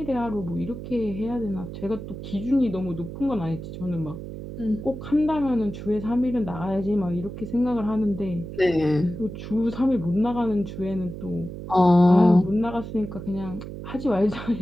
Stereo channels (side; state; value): right; noise; hum, 10 dB below the sound